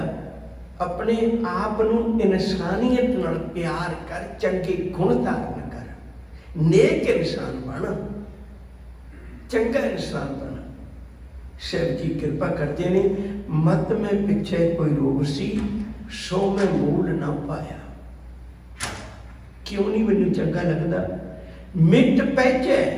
अपने आप नूं इंसानियत नाल प्यार कर, चंगे गुण धारण कर, नेक इंसान बन, चंगा इंसान बन। शिव जी कृपा करते ने, मत में पिछे कोई रोग सी सो मैं मूल ना पाया। क्यों नहीं मैनू चंगा लगता? मिट पैचे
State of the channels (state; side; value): identical; both; correlation 1.00